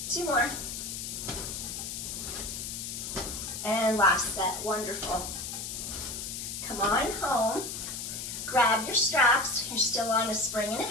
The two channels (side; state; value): left; noise; hiss, 6 dB below the sound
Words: 2 more. And last set. Wonderful. Come on home. Grab your straps. You're still on a spring and